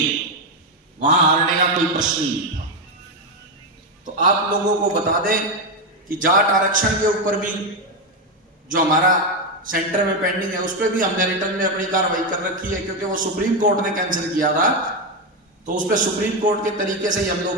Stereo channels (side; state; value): both; normal; correlation 0.08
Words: वहां हारने का कोई प्रश्न ही नहीं था। तो आप लोगों को बता दें कि जाट आरक्षण के ऊपर भी जो हमारा सेंटर में पेंडिंग है, उस पर भी हमने रिटर्न में अपनी कार्रवाई कर रखी है, क्योंकि वो सुप्रीम कोर्ट ने कैंसिल किया था। तो उस पर सुप्रीम कोर्ट के तरीके से ही हम